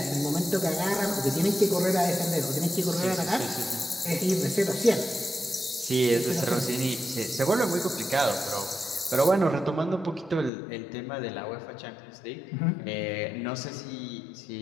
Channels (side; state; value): right; drops out; at 10.5 s